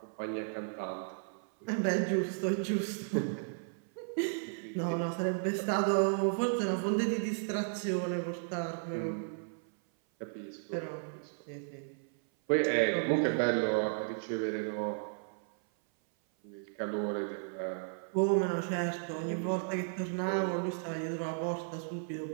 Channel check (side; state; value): left; silent; 55 dB below the other